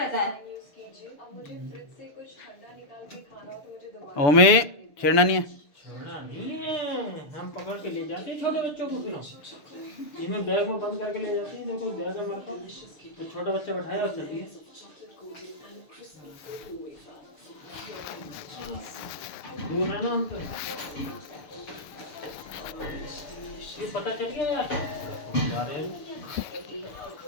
है। ओमे छेड़ना नहीं है। छोड़ा नहीं है, हम पकड़ के ले जाते हैं छोटे बच्चों को, फिर हम इनमें बैग में बंद करके ले जाते हैं। देखो बैग है हमारे पास, तो छोटा बच्चा बैठाया और चलती है। दूर है ना हम तो, ये पता चल गया यार जा रहे हैं।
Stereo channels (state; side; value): late; right; 6.9 ms